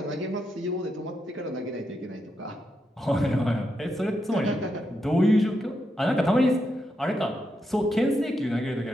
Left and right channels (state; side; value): normal; both; correlation 0.83